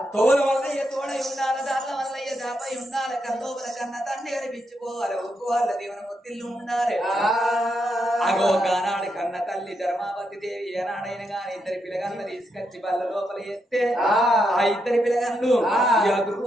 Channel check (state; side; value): normal; both; correlation 0.81